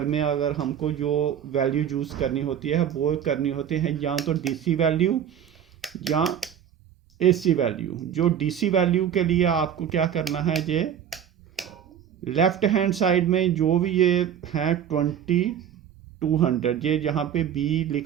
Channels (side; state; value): left; quieter; 9.2 dB